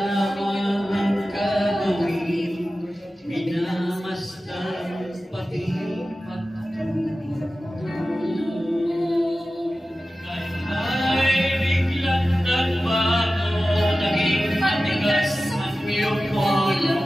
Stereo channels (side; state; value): both; normal; correlation 0.95